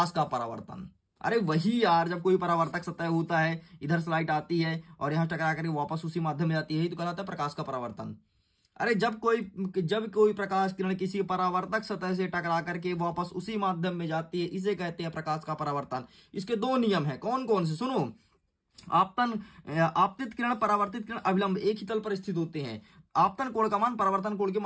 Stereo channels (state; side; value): identical; both; correlation 1.00